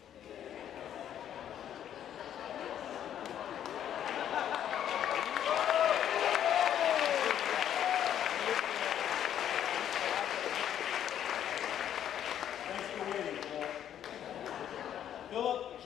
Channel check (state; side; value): quieter; right; 10.2 dB